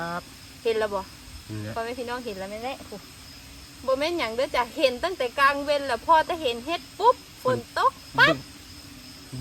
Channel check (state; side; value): identical; both; correlation 1.00